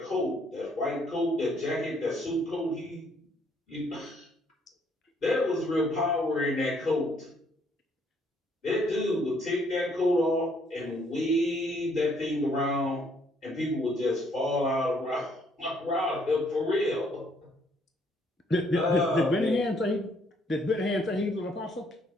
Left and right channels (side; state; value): both; normal; correlation 0.67